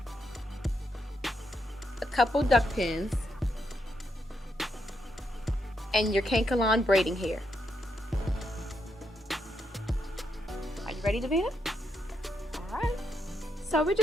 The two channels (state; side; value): normal; both; correlation 0.80